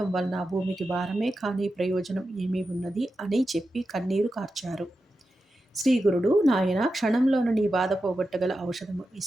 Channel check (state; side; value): normal; both; correlation 0.90